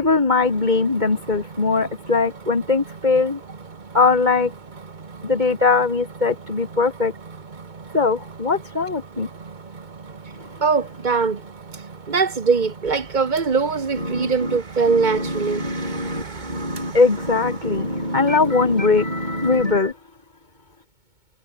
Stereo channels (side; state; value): left; late; 2.2 ms